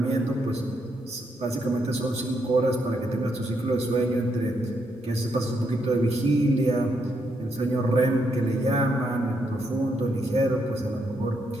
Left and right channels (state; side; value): normal; both; correlation 0.77